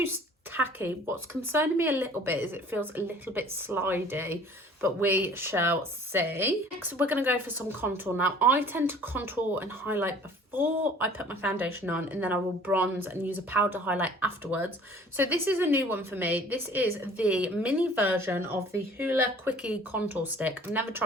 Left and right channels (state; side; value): normal; both; correlation 0.50